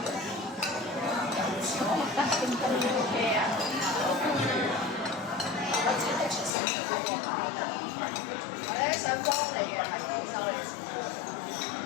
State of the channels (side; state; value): right; drops out; at 6.6 s